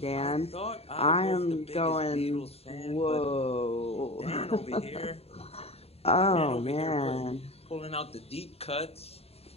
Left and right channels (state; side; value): late; right; 0.29 ms